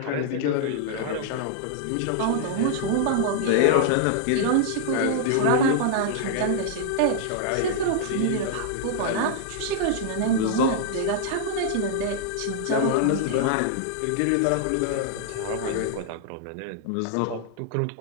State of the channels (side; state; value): both; different; correlation -0.01